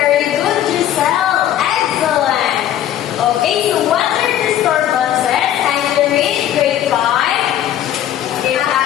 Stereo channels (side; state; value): right; quieter; 11.5 dB